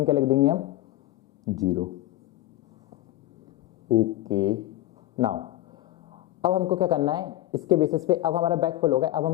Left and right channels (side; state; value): right; quieter; 15.6 dB